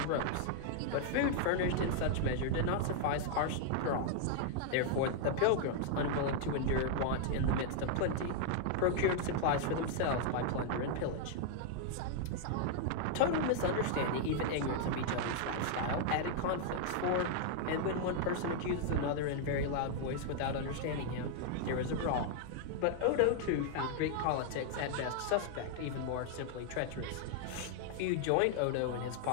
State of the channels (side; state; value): both; different; correlation -0.01